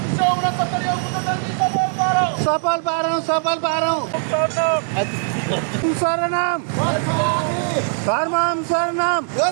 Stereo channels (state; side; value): silent; left; 66 dB below the other